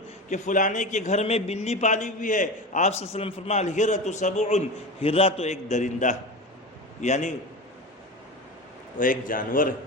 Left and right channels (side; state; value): both; normal; correlation 0.27